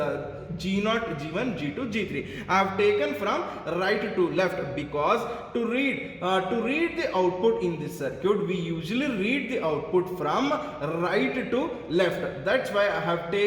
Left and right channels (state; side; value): identical; both; correlation 1.00